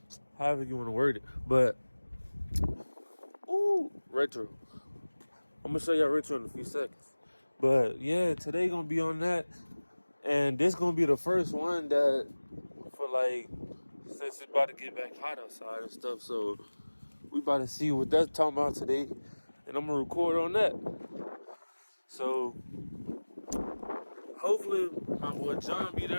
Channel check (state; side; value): inverted; both; correlation -1.00